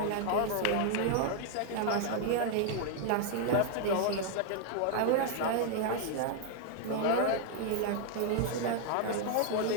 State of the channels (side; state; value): both; different; correlation 0.00